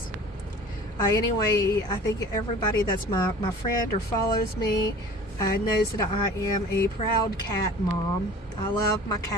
Anyway, I think everybody that's my friend or follows me knows that I am a proud cat mom. I love my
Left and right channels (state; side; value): normal; both; correlation 0.44